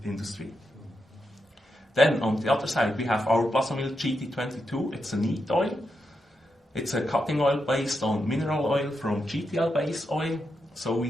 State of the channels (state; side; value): normal; both; correlation 0.85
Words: industry. Then on the other side, we have our Blaser GT22. It's a neat oil. It's a cutting oil based on mineral oil from GTL base oil. So we